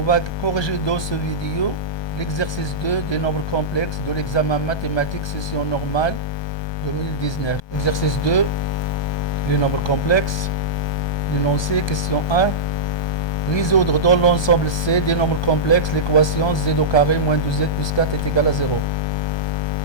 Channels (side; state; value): right; late; 1.2 ms